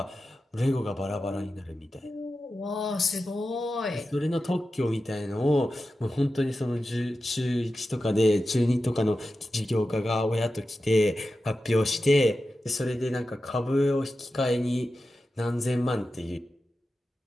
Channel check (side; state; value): both; normal; correlation 0.92